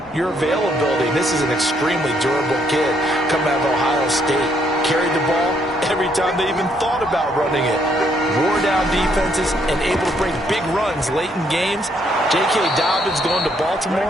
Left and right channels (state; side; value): normal; both; correlation 0.71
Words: your availability. This is an extremely durable kid coming out of Ohio State. Carried the ball every time they even thought about running it. Wore down defenses and able to break big runs late in games. J.K. Dobbins going to